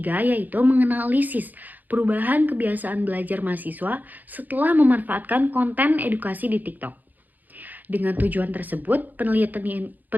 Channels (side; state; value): left; late; 0.084 ms